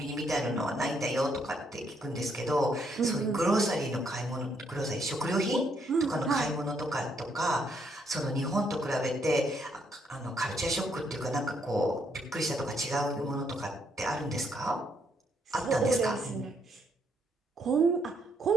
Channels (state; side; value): normal; both; correlation 0.73